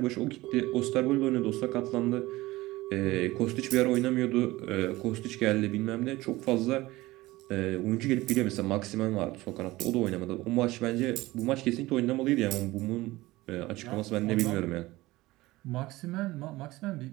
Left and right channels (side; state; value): left; quieter; 19.0 dB